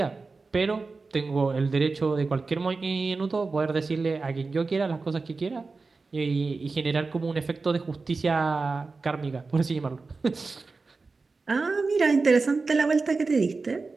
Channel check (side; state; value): left; quieter; 4.0 dB